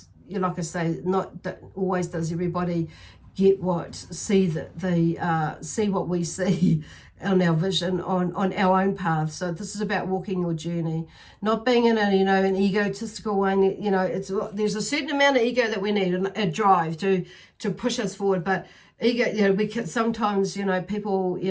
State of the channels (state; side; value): identical; both; correlation 1.00